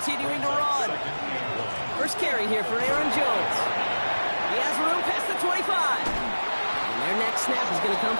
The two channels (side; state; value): both; inverted; correlation -1.00